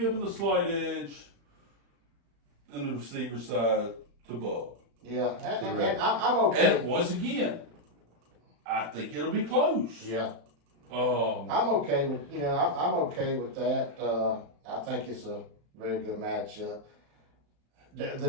the slight edge in the receiver side to Bub. Yeah, and I'm okay. And once again, I think it'll be close. Yeah. Um, I'm okay with I'm okay with that. I think it's a very good matchup. The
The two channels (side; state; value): left; late; 35 ms